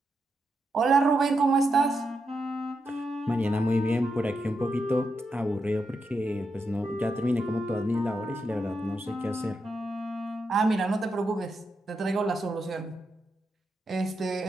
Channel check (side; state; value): both; normal; correlation 0.85